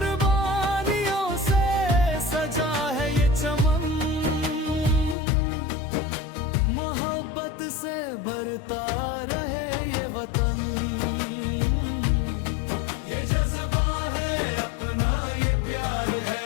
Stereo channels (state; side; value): drops out; right; at 5.2 s